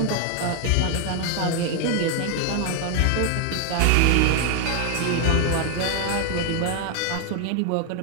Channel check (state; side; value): different; both; correlation 0.00